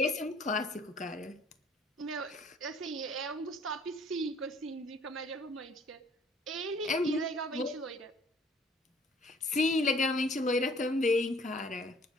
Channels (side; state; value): both; normal; correlation 0.57